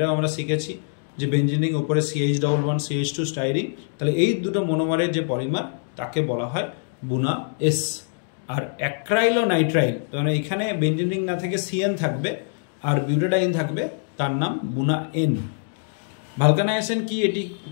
আমরা শিখেছি যে বেঞ্জিনিং ওপরে CH11 CH2 স্টাইরিন। তাহলে এই দুটো মনোমারের যে পলিমার তাকে বলা হয় বুনা এস। আর অ্যাক্রাইলোনাইট্রাইল, মানে এখানে বেঞ্জিনিং না থেকে CN থাকবে আর বিউটাডাইন থাকবে, তার নাম বুনা এন। ভালকানাইজেশন কি, এটি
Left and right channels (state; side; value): silent; right; digital silence